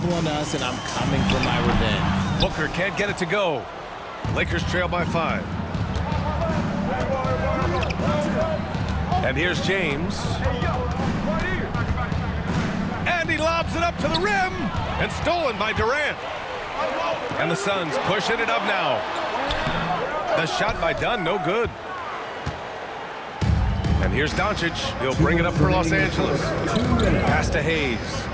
on us, and I'm coming for my revenge. Booker can't get it to go. Lakers trail by 5. And here's James. And he lobs it up to the rim. And stolen by Durant. And the Suns pushing it up now. The shot by Dunn, no good. And here's Doncic. He'll bring it up for Los Angeles. Pass to Hayes.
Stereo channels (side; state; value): both; identical; correlation 1.00